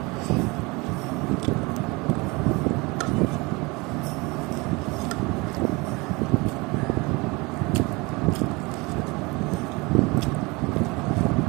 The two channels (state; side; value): quieter; left; 25.4 dB